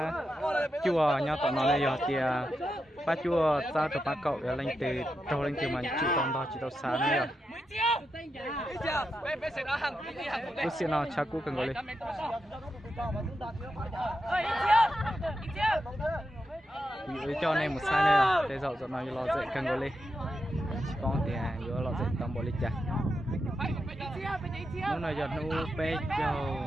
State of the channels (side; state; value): both; normal; correlation 0.87